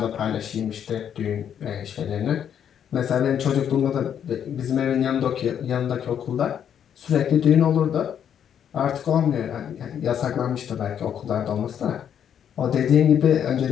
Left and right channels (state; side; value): quieter; right; 8.9 dB